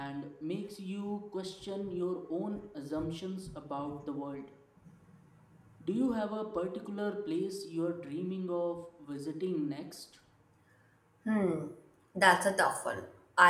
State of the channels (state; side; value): identical; both; correlation 1.00